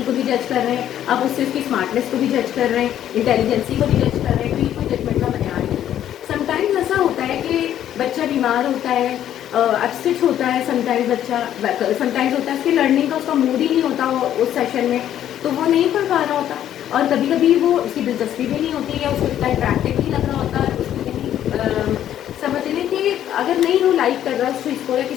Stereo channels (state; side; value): quieter; right; 11.1 dB